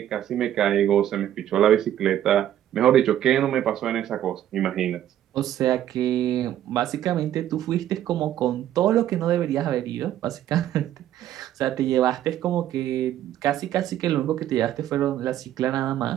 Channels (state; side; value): quieter; left; 11.8 dB